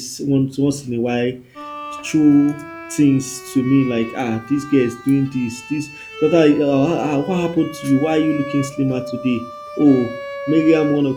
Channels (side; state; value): both; identical; correlation 1.00